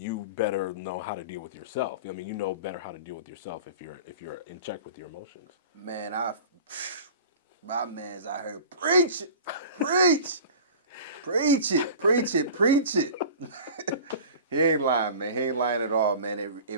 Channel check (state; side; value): inverted; both; correlation -0.39